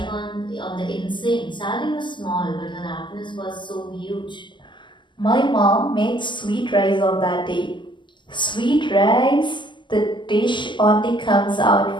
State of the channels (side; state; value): right; late; 0.23 ms